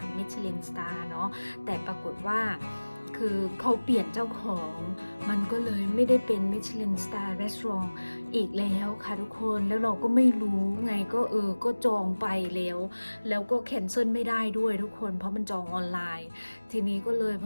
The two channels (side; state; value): both; inverted; correlation -1.00